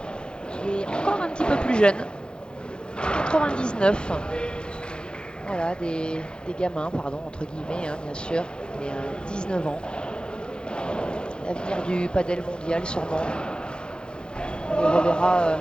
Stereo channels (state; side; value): late; right; 0.050 ms